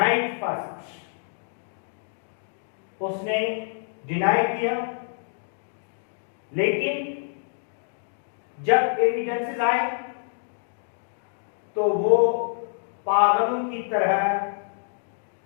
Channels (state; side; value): silent; right; digital silence